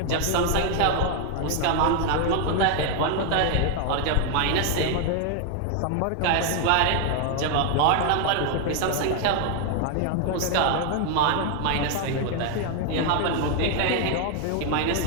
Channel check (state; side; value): different; both; correlation 0.00